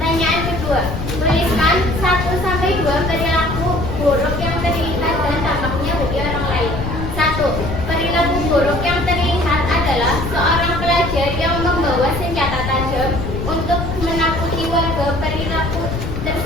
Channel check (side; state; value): left; noise; rumble, 5 dB below the sound